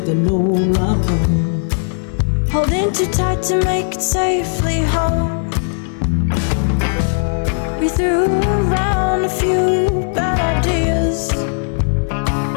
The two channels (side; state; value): right; silent; 68 dB below the other